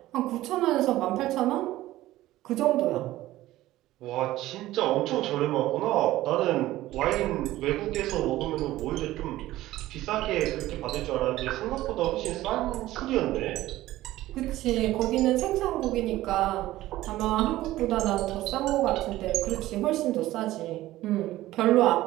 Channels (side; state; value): left; quieter; 15.9 dB